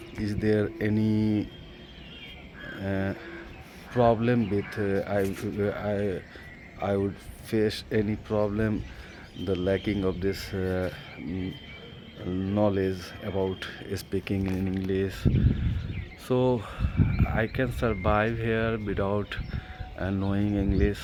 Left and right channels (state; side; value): identical; both; correlation 1.00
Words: is there any uh, problem with I would face any problem the lacking of this knowledge about speaking in English. So I can survive here without knowing English.